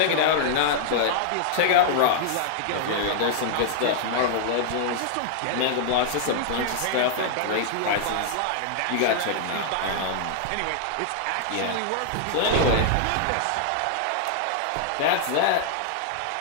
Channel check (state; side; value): different; both; correlation -0.01